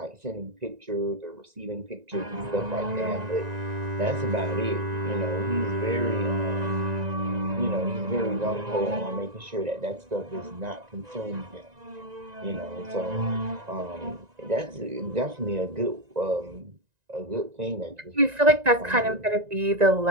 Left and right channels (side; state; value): left; late; 1.9 ms